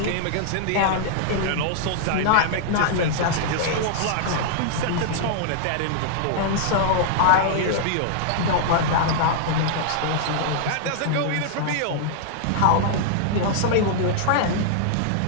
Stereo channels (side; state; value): both; different; correlation -0.01